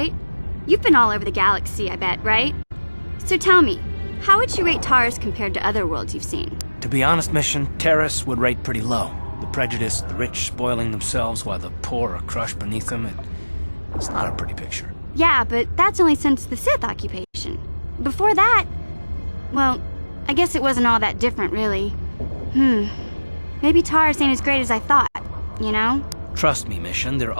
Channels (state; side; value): inverted; both; correlation -1.00